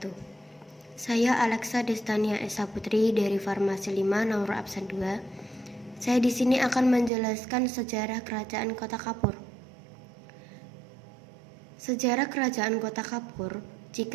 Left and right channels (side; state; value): left; drops out; at 7.1 s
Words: Saya Alexa Destania Esa Putri dari Farmasi 5 nomor absen 2. Saya di sini akan menjelaskan sejarah Kerajaan Kota Kapur. Sejarah Kerajaan Kota Kapur,